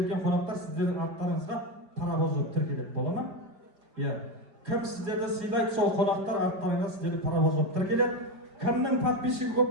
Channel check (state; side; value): late; left; 4.8 ms